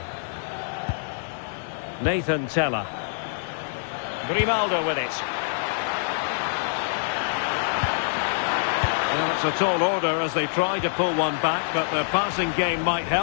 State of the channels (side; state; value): right; silent; digital silence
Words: Nathan Tella. Grimaldo with it. Well, it's a tall order as they try to pull one back, but the passing game might